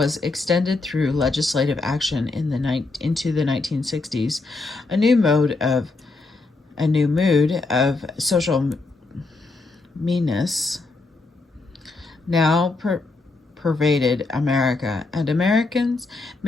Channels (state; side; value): quieter; right; 3.5 dB